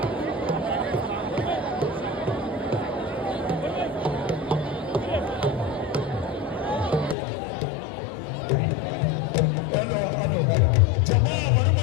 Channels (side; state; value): right; drops out; at 7.2 s